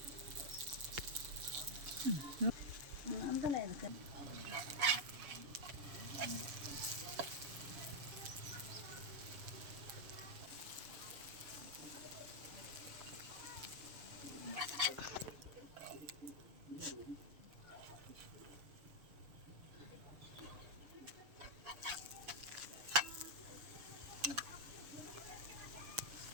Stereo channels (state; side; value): late; left; 7.1 ms